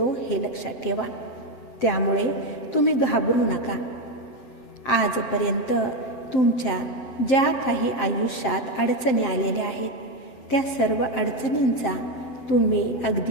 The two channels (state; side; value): late; right; 7.6 ms